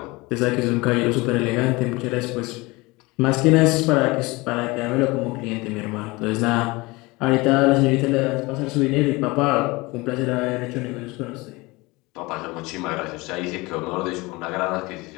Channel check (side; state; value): right; quieter; 23.3 dB